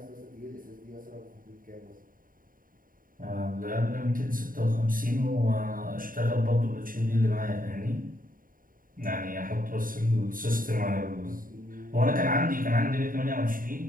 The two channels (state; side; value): late; left; 0.41 ms